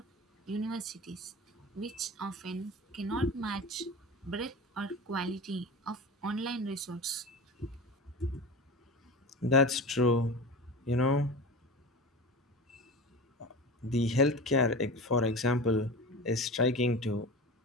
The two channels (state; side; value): normal; both; correlation 0.31